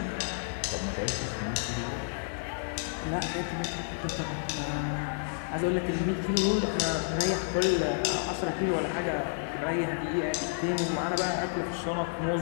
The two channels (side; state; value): right; silent; 57 dB below the other